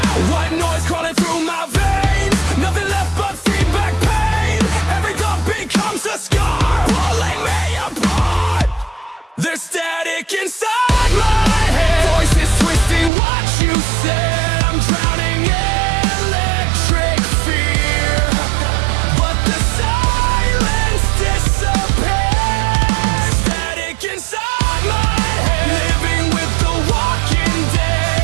White noise crawling through my veins, nothing left but feedback pain. Every thought becomes a scar, pulling me apart. There's static inside my head, voices twisting what you said. I'm drowning in electric fear, but the silence disappears. Static inside my head, living with the walking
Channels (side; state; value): left; drops out; at 13.1 s